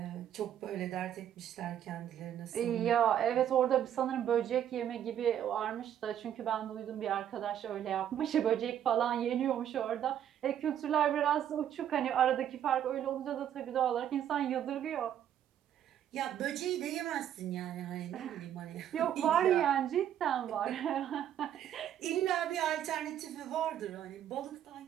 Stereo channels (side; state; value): left; quieter; 10.3 dB